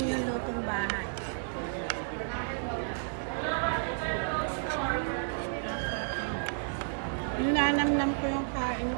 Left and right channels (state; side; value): silent; left; digital silence